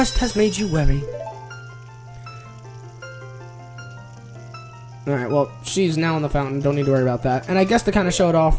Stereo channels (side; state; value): both; identical; correlation 1.00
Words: has made you weary. Alright, well, she's now in the fountain. Don't need to worry about that. And I guess to kind of show it off,